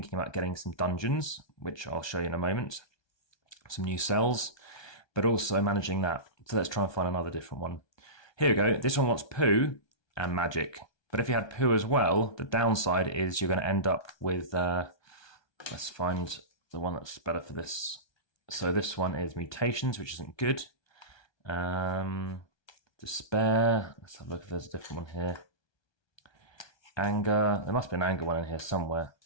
about getting some dungeons, which I'll show you in a moment, some new cells, but also managing that. So let's try and find another different one. Here we go. This one wants poo and magic. But if you had poo as well, the downside is you're going to end up with, let's find the one that's better for this. So this one is mutations, which isn't good. Despair, let's have a look if there's a different one here. Anger, there must be an anger one in here somewhere.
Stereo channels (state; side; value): late; right; 1.2 ms